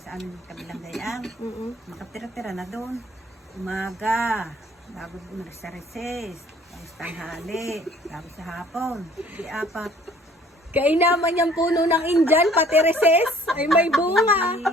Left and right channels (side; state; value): both; normal; correlation 0.54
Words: aming kabilang dayang. Makatira-tira na doon. Umaga, bago umalis sa recess, tapos tanghali, tapos sa hapon. Di apat. Kainaman yung puno ng Indian, pati reses, ay may bunga.